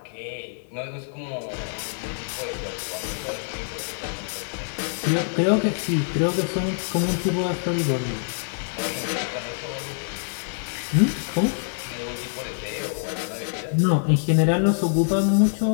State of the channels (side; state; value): right; silent; 60 dB below the other